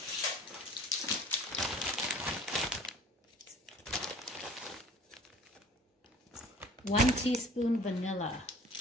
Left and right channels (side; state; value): both; normal; correlation 0.48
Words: 1 teaspoon vanilla.